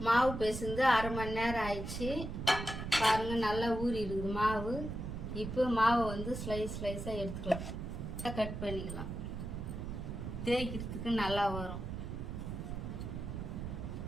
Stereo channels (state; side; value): noise; right; rumble, 6 dB below the sound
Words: மாவு பிசைந்து 1/2 மணி நேரம் ஆயிடுச்சு. பாருங்க, நல்லா ஊறி இருக்குது மாவு. இப்போ மாவை வந்து ஸ்லைஸாக எடுத்துக்கலாம். கட் பண்ணிக்கலாம். தேய்க்கிறதுக்கு நல்லா வரும்.